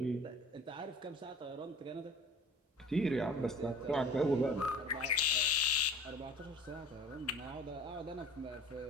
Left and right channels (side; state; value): both; normal; correlation 0.46